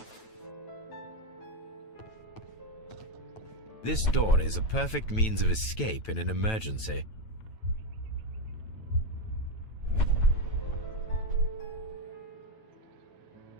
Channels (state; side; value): late; right; 9.1 ms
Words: This door is a perfect means of escape in an emergency.